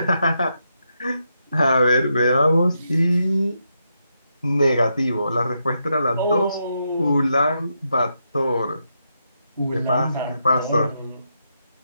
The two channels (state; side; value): inverted; both; correlation -0.82